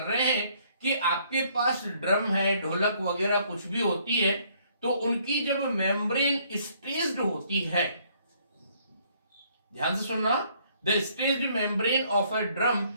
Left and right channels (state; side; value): inverted; both; correlation -0.65